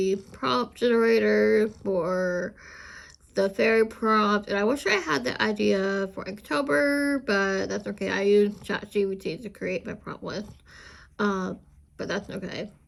prompt generator for the fairy prompt, and I wish I had the idea for October, but that's okay. I used ChatGPT to create my prompt list, but that's okay.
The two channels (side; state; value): both; identical; correlation 1.00